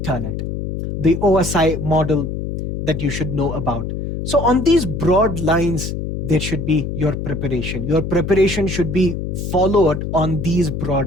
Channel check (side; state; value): left; noise; hum, 4 dB below the sound